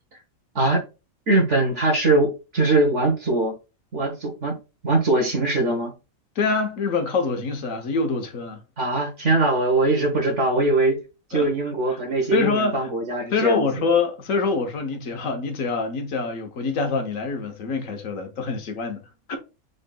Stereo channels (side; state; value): both; normal; correlation -0.03